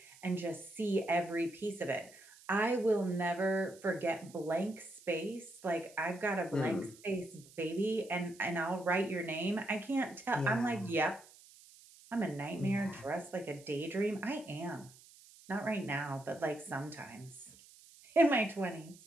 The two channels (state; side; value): noise; right; hiss, 22 dB below the sound